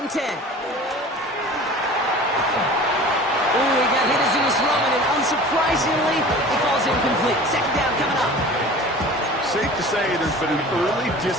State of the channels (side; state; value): both; normal; correlation 0.41